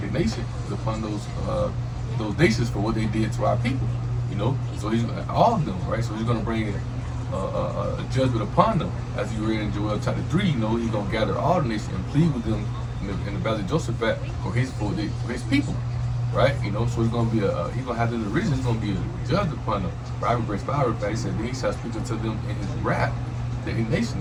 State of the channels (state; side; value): identical; both; correlation 1.00